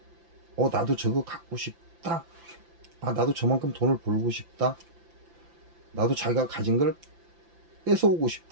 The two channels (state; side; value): late; left; 5.9 ms